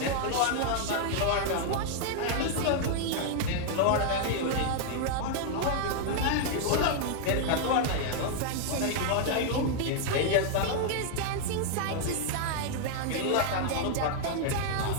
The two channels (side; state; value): both; different; correlation 0.00